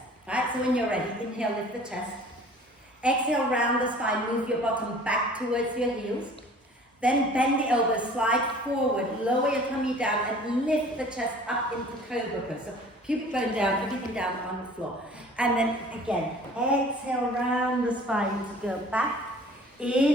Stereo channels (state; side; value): normal; both; correlation 0.48